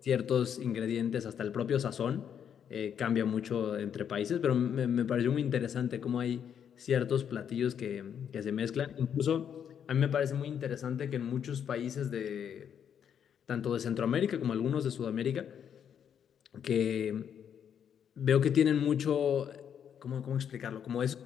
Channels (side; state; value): right; quieter; 8.4 dB